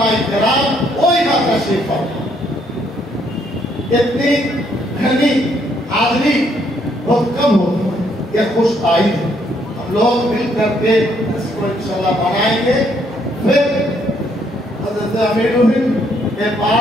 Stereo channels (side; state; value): both; normal; correlation 0.70